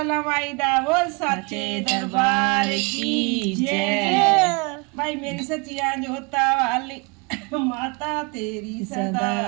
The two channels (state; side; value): quieter; left; 30.0 dB